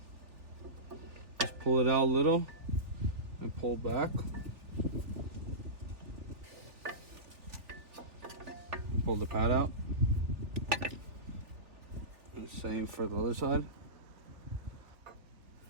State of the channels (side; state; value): left; late; 3.4 ms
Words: Just pull it out a little and pull back. And pull the pad out. And same for the other side.